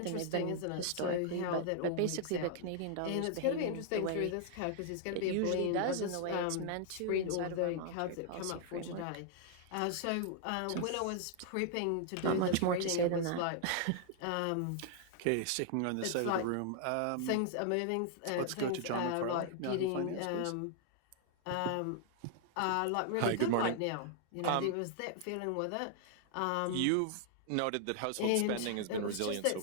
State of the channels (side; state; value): both; different; correlation -0.01